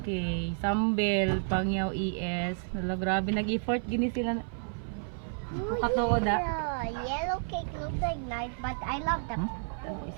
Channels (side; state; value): left; silent; 55 dB below the other